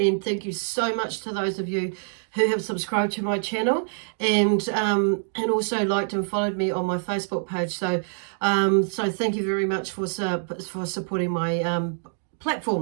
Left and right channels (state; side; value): silent; left; digital silence